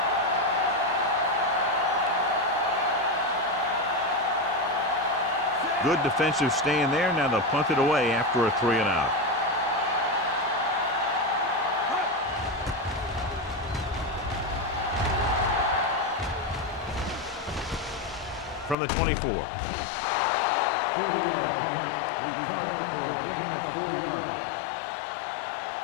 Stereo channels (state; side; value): drops out; right; at 18.8 s